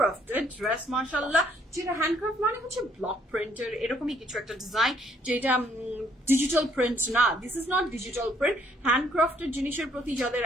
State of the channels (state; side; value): normal; both; correlation 0.66